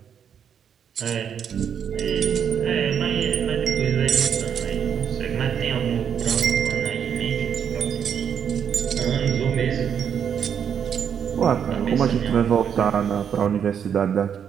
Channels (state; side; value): quieter; left; 8.0 dB